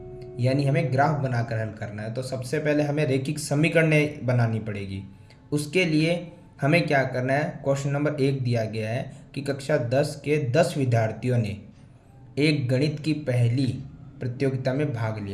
यानी हमें ग्राफ बनाकर हल करना है। तो सबसे पहले हमें रैखिक समीकरणें बनानी पड़ेगी। उसके लिए हमें क्या करना है, क्वेश्चन नंबर 1 दिया गया है कि कक्षा 10 के 10 विद्यार्थियों ने एक गणित की पहली प्रतियोगिता में भाग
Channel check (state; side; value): identical; both; correlation 1.00